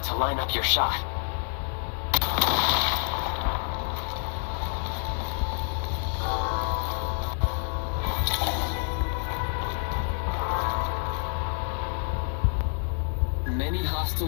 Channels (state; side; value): silent; right; 59 dB below the other